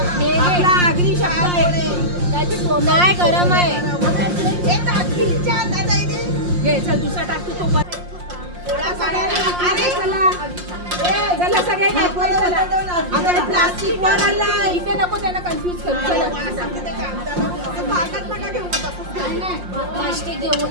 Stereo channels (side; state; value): left; late; 5.6 ms